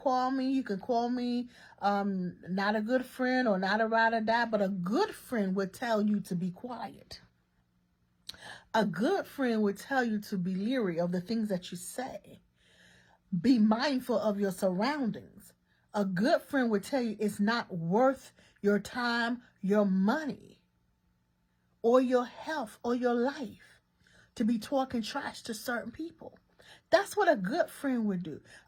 me. You can call me not a good friend or not a ride or die, but a good friend would tell you to be quiet. A good friend would tell you to be leery of the things that you say. Be mindful of your surroundings. A good friend would tell you it's not worth your time, your money, or your health, or your life to be talking trash to certain people. That's what a good friend would do.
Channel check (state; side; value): identical; both; correlation 1.00